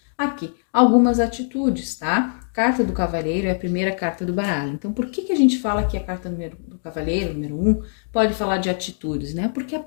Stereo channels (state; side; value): silent; right; digital silence